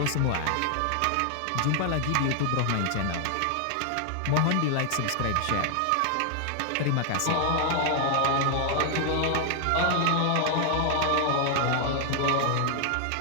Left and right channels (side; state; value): both; different; correlation 0.00